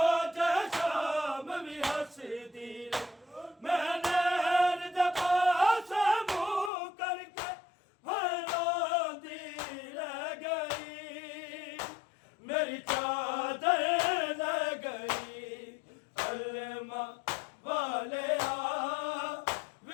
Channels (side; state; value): right; drops out; at 6.7 s